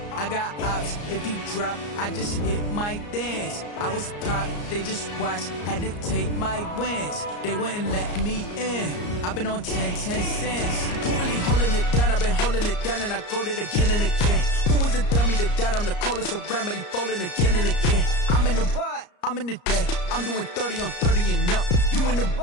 I got ops, if he drop, I just hit my dance. I was pop, they just watched, had to take my wins. They wouldn't let me in, I've been on 10 cents. Who really holding it down? I've been holding it down and I go it again and again. Who was the dummy that died? I'm the coldest around, but he falling again and again. I'm in the what? I'm in the day, I'm doing 30 on 30 and up. You in the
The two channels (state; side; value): late; right; 34 ms